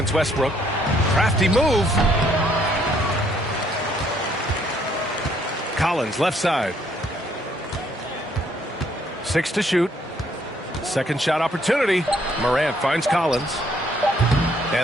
Westbrook. Crafty move. Collins, left side. 6 to shoot. Second shot opportunity. Morant finds Collins.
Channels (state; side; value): normal; both; correlation 0.67